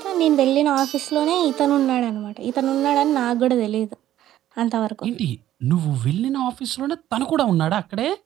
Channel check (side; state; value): left; quieter; 12.7 dB